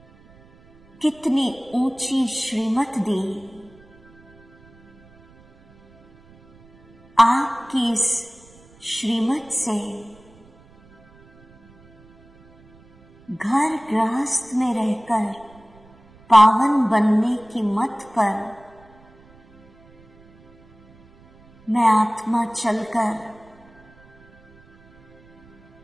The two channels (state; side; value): noise; right; rumble, 28 dB below the sound